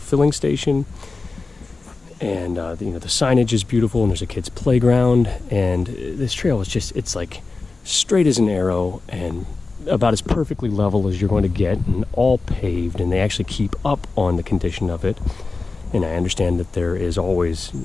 station. And, you know, the signage is beautiful, and there's a kid's playground. And this trail is just, it's like straight as an arrow and about as perfectly level as you're going to get, and all paved, and they actually keep up on the condition of it. And I understand that there is always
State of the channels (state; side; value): quieter; right; 3.8 dB